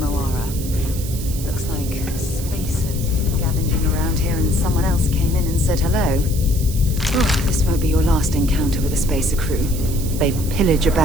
Looks like spacers scavenging around here and someone else came in and said hello. Oh, this won't be your last encounter with a spacer crew. They pillage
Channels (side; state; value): right; noise; hiss, 11 dB below the sound